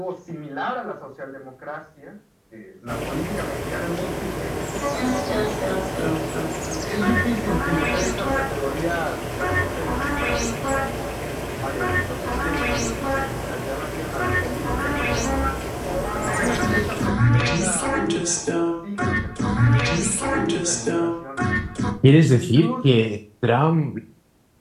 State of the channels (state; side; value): identical; both; correlation 1.00